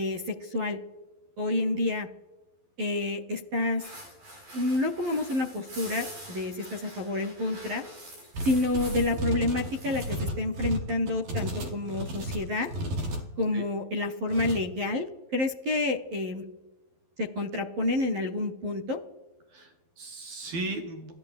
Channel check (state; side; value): late; left; 11 ms